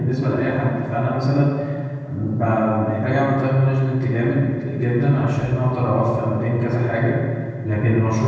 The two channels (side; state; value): both; identical; correlation 1.00